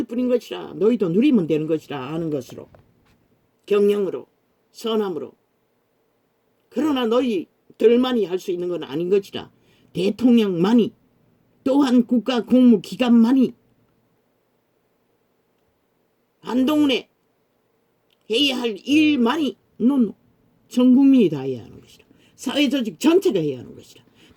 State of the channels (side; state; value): both; identical; correlation 1.00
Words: 뿐인 것이라. 너희도 누리면 되는 것이라. 아는 것으로 경영으로 선함으로. 그러나 너희들만이 할 수 있는 건 아닌 것이라. 대통령만이 또한 국가 공무기관만이 한동훈에 해야 할 일만이 전 국민이 다 해야 하는 것이라. 사회조직 전체가 해야 하는 것이라.